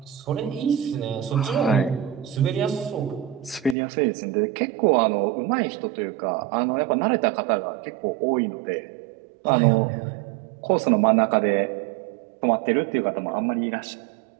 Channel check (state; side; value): drops out; left; at 3.8 s